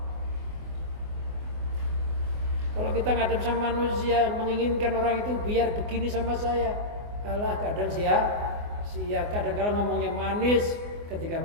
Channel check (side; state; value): left; late; 24 ms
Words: Kalau kita ngadep sama manusia, menginginkan orang itu biar begini sama saya, alah kadang sia-sia, kadang-kadang ngomongnya manis, ketika